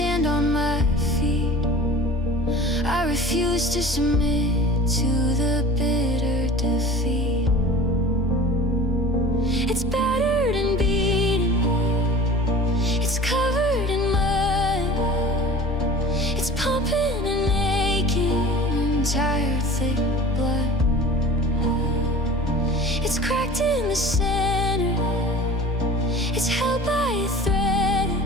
on my feet. I refuse to submit to the bitter defeat. It's battered and beaten, it's covered in mud, it's pumping and aching in tired thick blood. It's cracked in the center, it's held by a thread.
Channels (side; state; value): both; normal; correlation 0.40